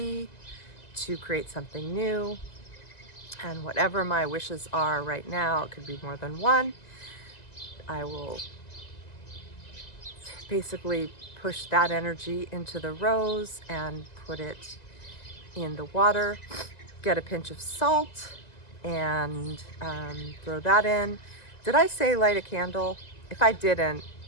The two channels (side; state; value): right; late; 2.0 ms